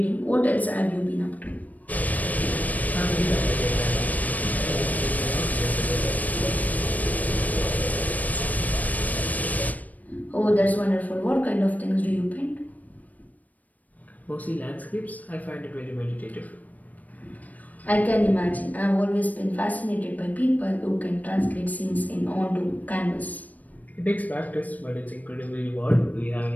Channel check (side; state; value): right; late; 0.075 ms